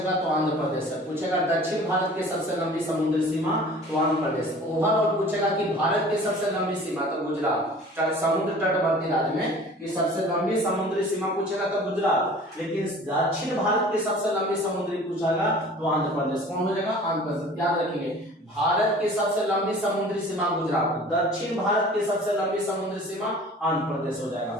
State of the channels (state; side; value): normal; both; correlation 0.45